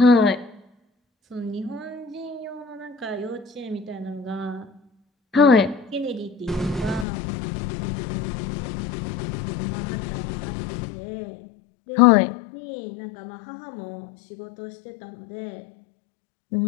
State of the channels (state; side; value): drops out; right; at 7.1 s